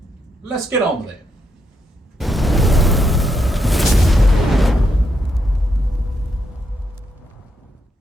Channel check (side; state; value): both; normal; correlation 0.80